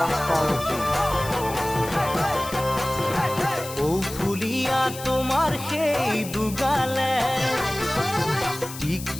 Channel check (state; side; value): noise; left; hiss, 12 dB below the sound